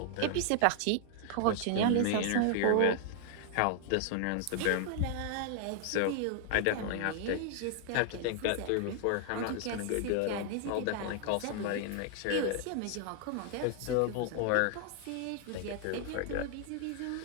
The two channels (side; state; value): both; different; correlation 0.00